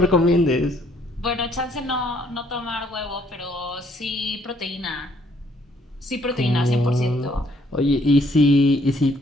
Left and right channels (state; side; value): normal; both; correlation 0.66